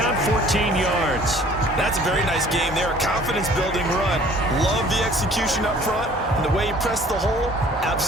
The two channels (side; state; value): both; normal; correlation 0.53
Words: 14 yards. That's a very nice game there, a confidence-building run. Love the execution up front, and the way he pressed the hole,